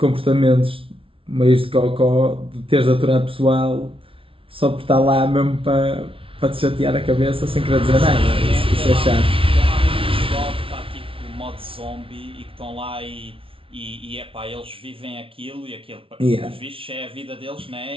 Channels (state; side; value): late; left; 0.26 ms